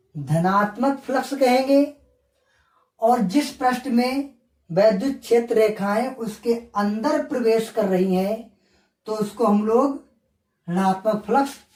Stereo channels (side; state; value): both; identical; correlation 1.00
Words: धनात्मक फ्लक्स कहेंगे, और जिस पृष्ठ में वैद्युत क्षेत्र रेखाएं उसके अंदर प्रवेश कर रही हैं तो उसको हम लोग ऋणात्मक फ्लक्स